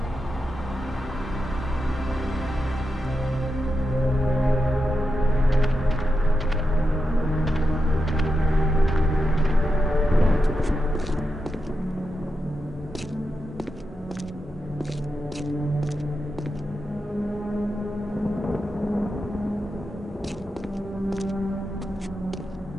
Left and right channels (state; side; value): normal; both; correlation 0.88